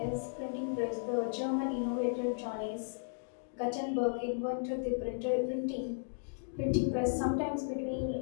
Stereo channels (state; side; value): silent; right; digital silence